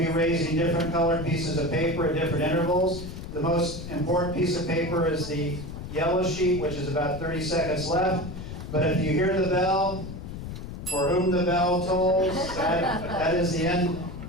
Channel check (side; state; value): left; noise; rumble, 9 dB below the sound